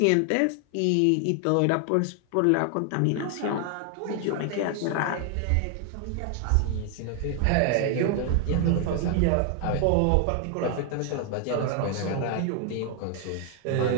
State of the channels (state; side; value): different; both; correlation 0.00